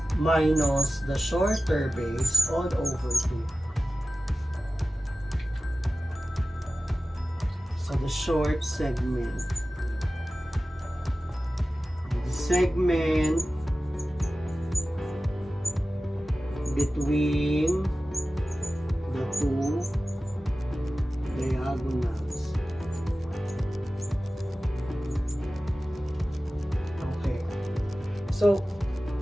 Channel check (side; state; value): both; normal; correlation 0.95